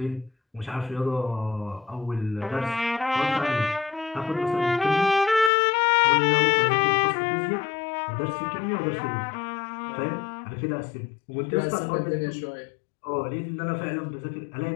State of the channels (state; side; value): drops out; right; at 5.5 s